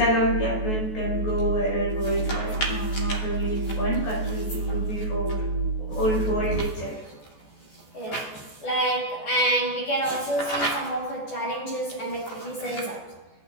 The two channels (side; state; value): right; late; 14 ms